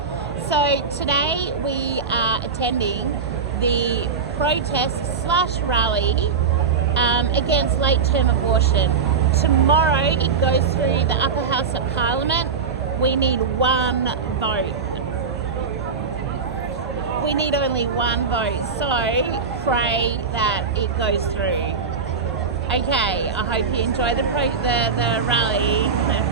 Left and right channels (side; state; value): left; quieter; 5.4 dB